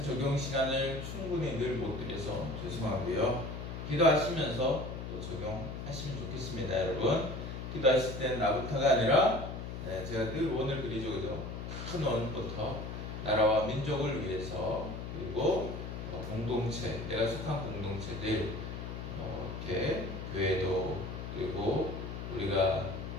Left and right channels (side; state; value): left; noise; hum, 7 dB below the sound